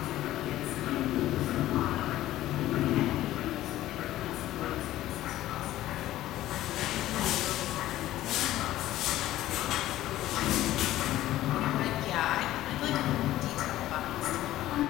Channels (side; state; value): right; quieter; 14.6 dB